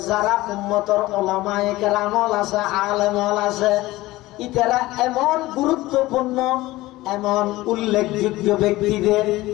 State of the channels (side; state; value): right; quieter; 18.3 dB